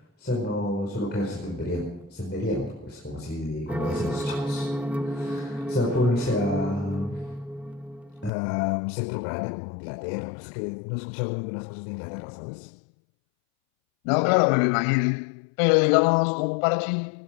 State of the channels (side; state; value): right; drops out; at 8.3 s